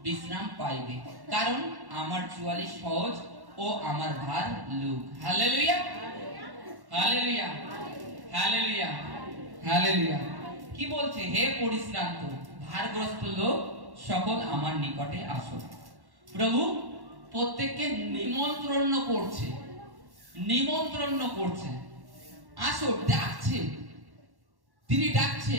বিশ্রাম পাইবে, কারণ আমার জোয়ালি সহজ ও আমার ভার লঘু। Hallelujah, hallelujah, hallelujah, hallelujah. কি বলছে? হে পরিশ্রান্ত ভারগ্রস্ত লোক সকল, আমার নিকটে আসো। প্রভু প্রত্যেককে নিমন্ত্রণ করছে, নিমন্ত্রণ করছে, আসো, ডাকছে। তিনি ডাকছে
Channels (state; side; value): late; left; 1.1 ms